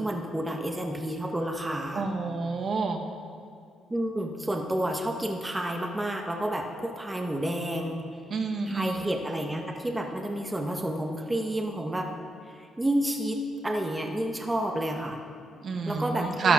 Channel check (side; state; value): both; normal; correlation 0.87